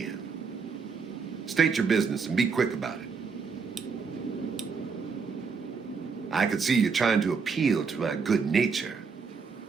State your business and be quick about it. I can see you're trying to appeal to my good nature.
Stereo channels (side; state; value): left; quieter; 5.3 dB